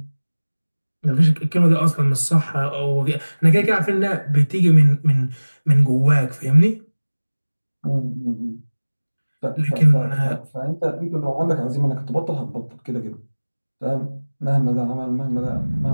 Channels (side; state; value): both; inverted; correlation -1.00